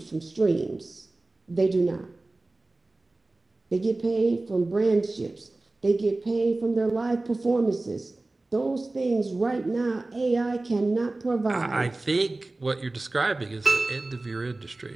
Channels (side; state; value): left; quieter; 3.0 dB